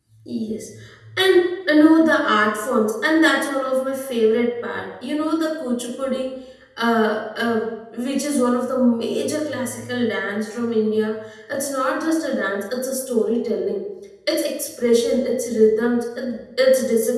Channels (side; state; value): both; identical; correlation 1.00